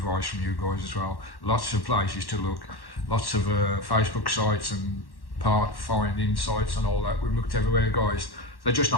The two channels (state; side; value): late; right; 1.1 ms